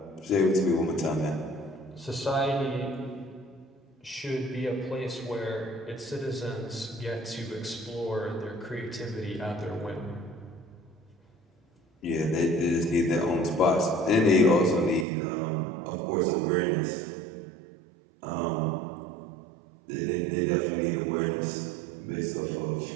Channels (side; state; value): left; drops out; at 15.1 s